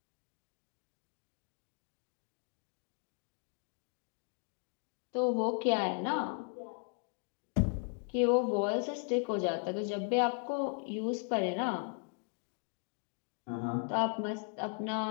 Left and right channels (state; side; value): quieter; right; 38.3 dB